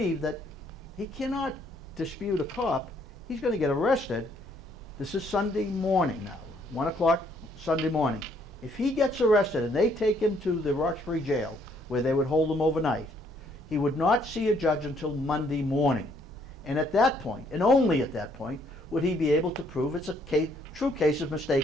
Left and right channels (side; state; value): both; normal; correlation 0.67